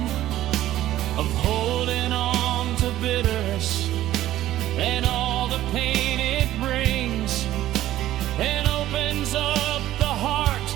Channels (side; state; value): left; quieter; 13.9 dB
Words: of holding on to bitterness and all the pain it brings, and opens up the heart